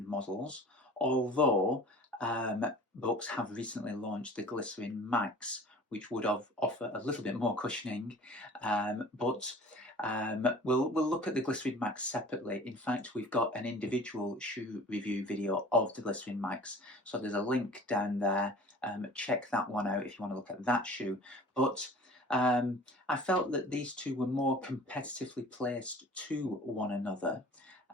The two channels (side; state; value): both; normal; correlation 0.45